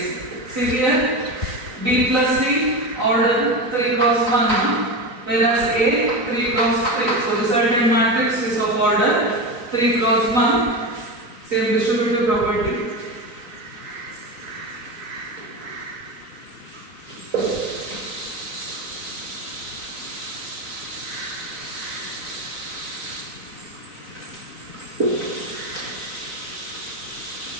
See here, B plus C order 3 cross 1, whereas A 3 cross 3. So resultant matrix is of order 3 cross 1. Same distributive property.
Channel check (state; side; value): late; left; 3.9 ms